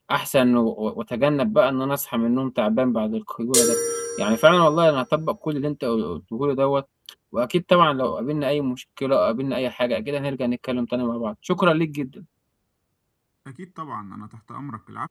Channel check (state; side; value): identical; both; correlation 1.00